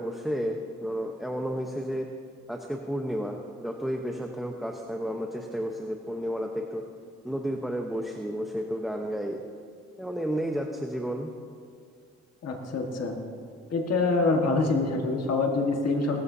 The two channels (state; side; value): normal; both; correlation 0.58